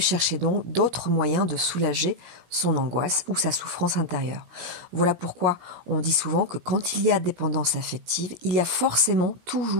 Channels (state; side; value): late; left; 17 ms